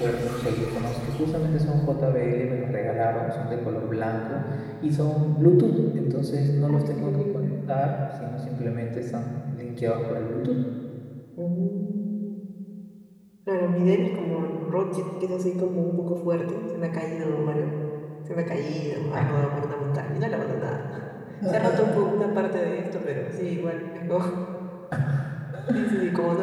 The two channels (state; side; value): identical; both; correlation 1.00